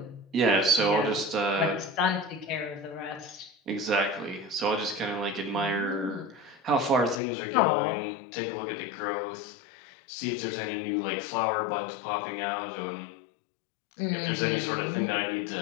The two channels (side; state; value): right; drops out; at 7.2 s